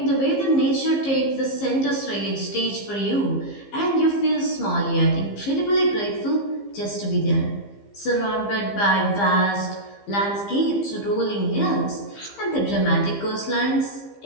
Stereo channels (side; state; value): right; late; 15 ms